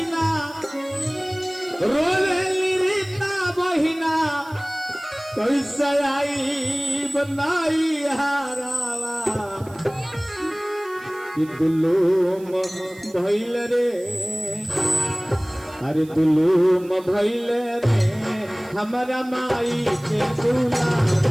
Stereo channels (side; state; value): right; noise; hiss, 24 dB below the sound